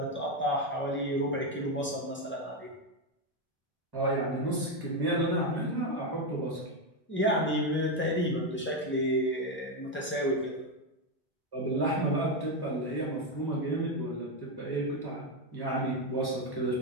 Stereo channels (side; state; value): both; normal; correlation 0.08